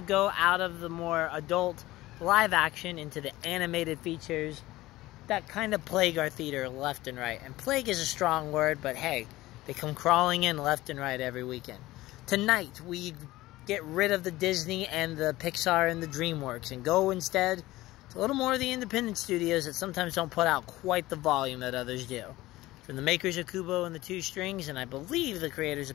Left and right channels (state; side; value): quieter; right; 17.6 dB